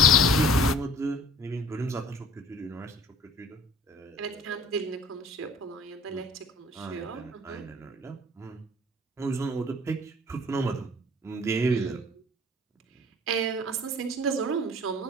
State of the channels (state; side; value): normal; both; correlation 0.50